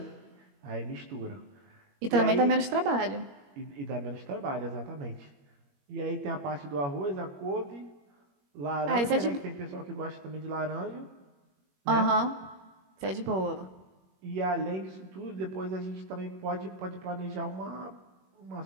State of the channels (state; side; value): late; left; 21 ms